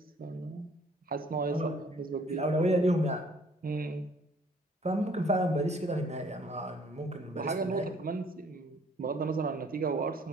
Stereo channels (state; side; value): normal; both; correlation 0.59